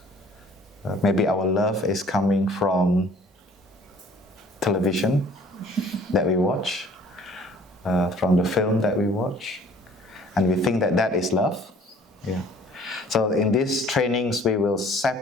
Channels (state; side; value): normal; both; correlation 0.54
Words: Maybe our love is coming from television that we watch, from the film that we watch, and we think that that is love. Yeah. So in these trainings, we will